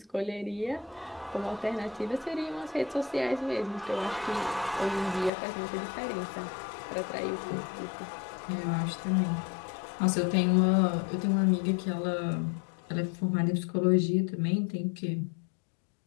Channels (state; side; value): drops out; right; at 5.3 s